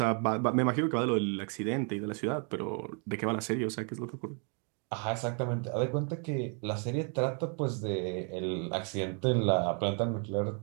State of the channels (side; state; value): left; quieter; 39.3 dB